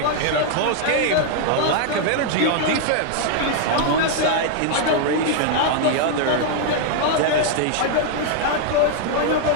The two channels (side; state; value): both; different; correlation 0.00